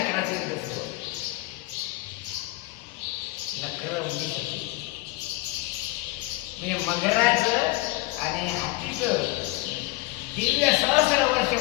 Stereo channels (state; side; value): quieter; right; 21.0 dB